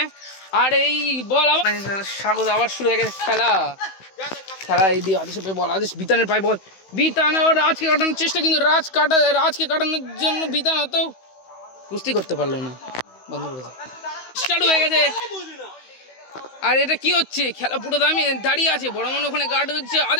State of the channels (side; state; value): right; late; 16 ms